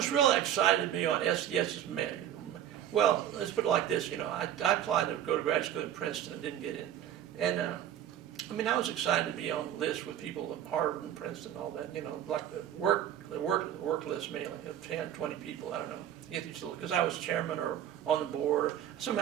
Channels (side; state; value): left; quieter; 10.8 dB